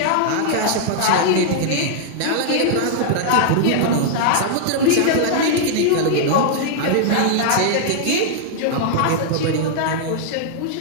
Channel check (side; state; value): both; different; correlation -0.01